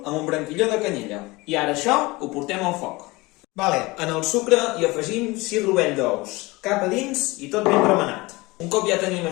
amb un branquilló de canyella. I ara això ho portem al foc. En el sucre hi afegim 6 rovell d'ous, cap a dins i tot ben remenat. Un cop ja tenim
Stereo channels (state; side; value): quieter; right; 22.6 dB